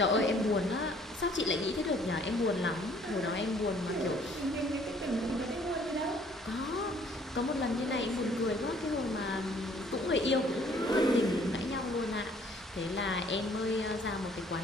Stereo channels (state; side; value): normal; both; correlation 0.59